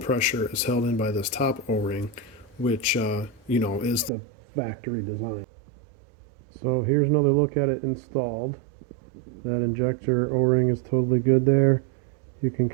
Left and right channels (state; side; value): drops out; left; at 4.1 s